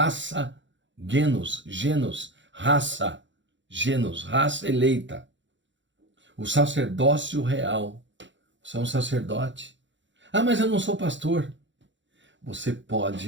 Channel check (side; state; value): left; late; 0.54 ms